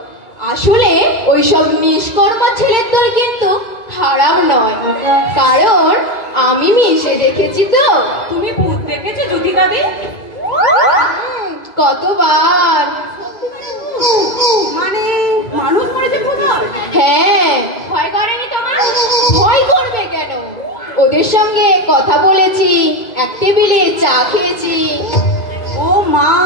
আসলে ওইসব নিষ্কর্মা ছেলের দল কিন্তু খারাপ নয়, কারণ আমি মিশে দেখেছি তো। তুমি ভূত দেখেছো জ্যোতিকাদি? কতবার। মানে মানুষ মরেছে ভূত হয়? হ্যাঁ, ভয় করেনি তোমার? ভয় করবে কেন? ওদের সঙ্গে কথা বলেছি, এক টেবিলে চা খেয়েছি। ও মা,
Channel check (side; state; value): right; late; 2.0 ms